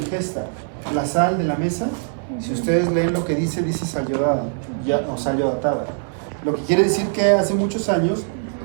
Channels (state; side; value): silent; left; digital silence